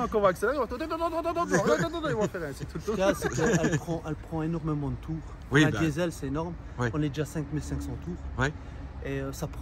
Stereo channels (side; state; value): both; identical; correlation 1.00